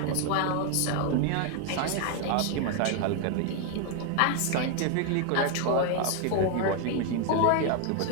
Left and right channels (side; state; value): both; different; correlation 0.01